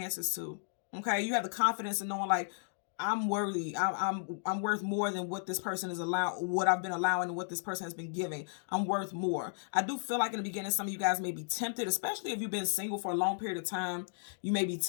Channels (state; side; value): silent; right; digital silence